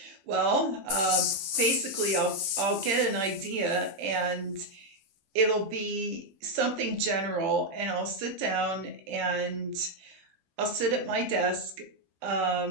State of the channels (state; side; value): late; left; 15 ms